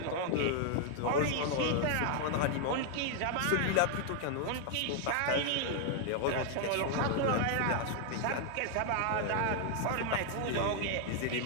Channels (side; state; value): both; different; correlation 0.00